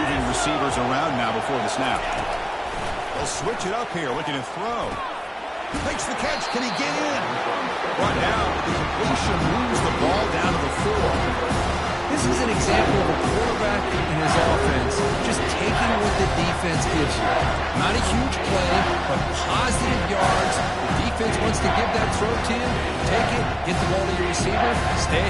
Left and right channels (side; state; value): both; identical; correlation 1.00